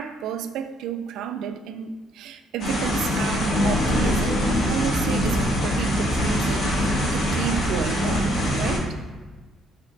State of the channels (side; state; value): both; normal; correlation 0.67